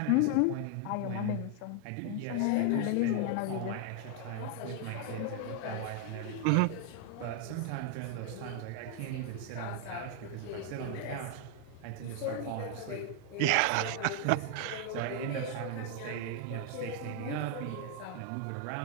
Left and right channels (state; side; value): different; both; correlation 0.00